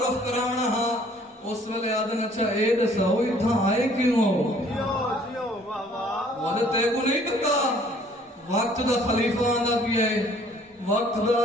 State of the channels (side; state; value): both; normal; correlation 0.57